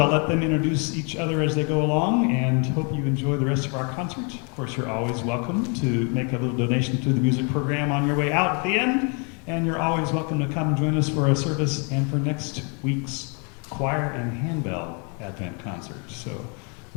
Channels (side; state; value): right; quieter; 35.6 dB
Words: let them introduce each other as they go along, and hope you enjoy the rest of our concert. Of course, you're always welcome to make a little donation to the music program on your way out at the end. And you're always welcome to come join us for a service and for next week's choir and handbell Advent concert. So